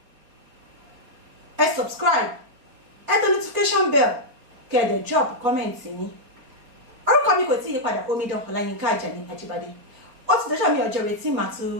ẹ subscribe, ẹ tẹ notification bell, kẹ́ ẹ dẹ̀ drop comment yín. Orúkọ mi kò tí yí padà, Omidan Ọláyínká Àjàní Àjíbádé. Ó ti dọ́jọ́ mi ọjọ́ retí màá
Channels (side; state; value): left; late; 4.5 ms